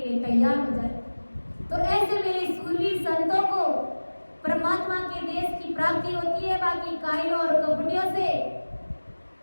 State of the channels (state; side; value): inverted; both; correlation -1.00